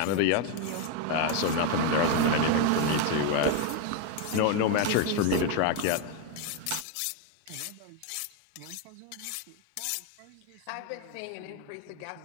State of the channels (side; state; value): both; different; correlation 0.01